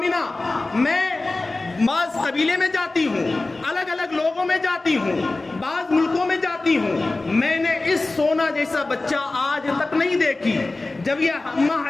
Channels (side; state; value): right; quieter; 3.1 dB